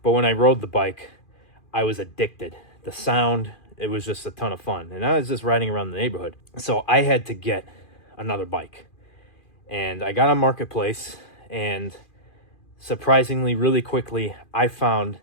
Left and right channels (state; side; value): late; right; 2.4 ms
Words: But when I rode the bike, I was addicted. The sound, it was just a ton of fun. And I was just riding around the neighborhood. So I had to get another bike. And I got on Marketplace, and surprisingly, really quickly, I found